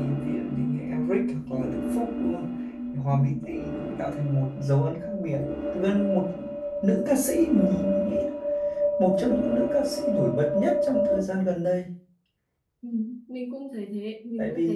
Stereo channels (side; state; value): both; identical; correlation 1.00